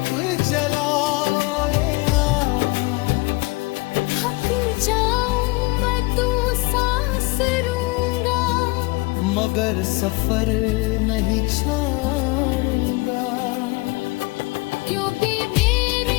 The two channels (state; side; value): quieter; right; 24.6 dB